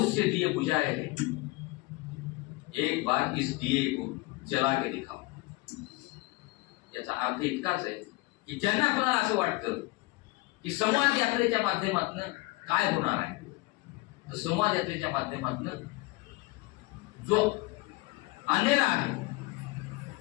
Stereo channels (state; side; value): quieter; right; 22.0 dB